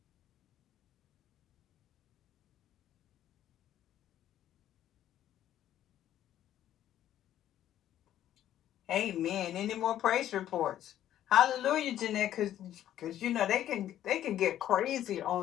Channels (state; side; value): quieter; right; 11.8 dB